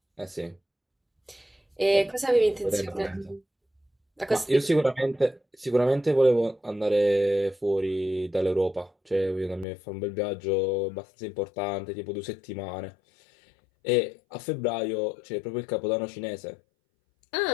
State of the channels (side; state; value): right; drops out; at 9.7 s